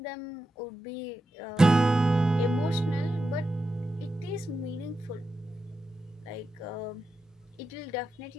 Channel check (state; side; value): normal; both; correlation 0.89